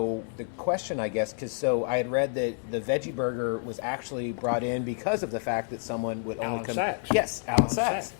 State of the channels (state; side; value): silent; right; digital silence